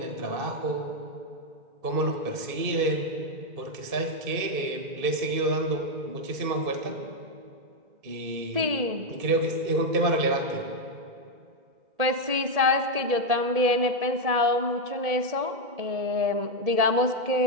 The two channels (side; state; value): left; late; 1.7 ms